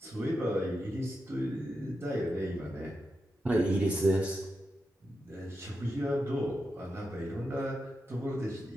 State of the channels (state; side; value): normal; both; correlation 0.88